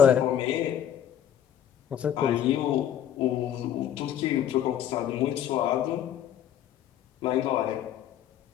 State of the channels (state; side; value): quieter; right; 10.2 dB